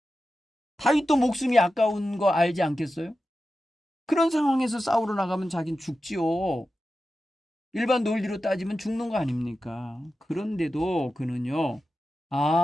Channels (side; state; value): both; normal; correlation 0.92